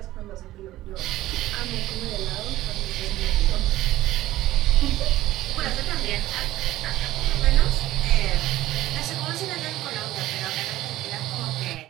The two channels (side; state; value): left; quieter; 15.6 dB